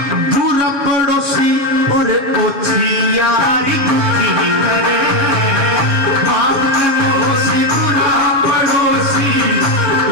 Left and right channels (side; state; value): left; late; 6.9 ms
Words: बुरा पड़ोसी और ओछी यारी दुखी करे। बाप के मोसी बुरा पड़ोसी